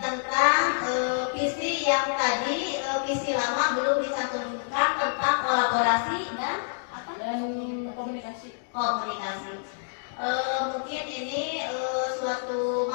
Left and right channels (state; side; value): silent; right; digital silence